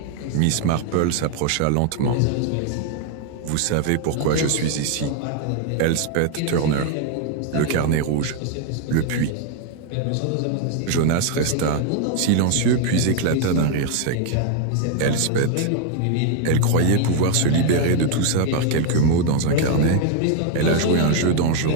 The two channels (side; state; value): both; different; correlation 0.00